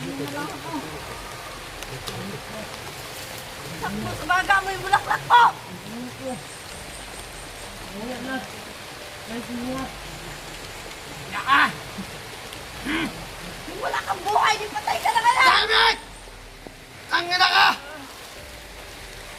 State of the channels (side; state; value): both; identical; correlation 1.00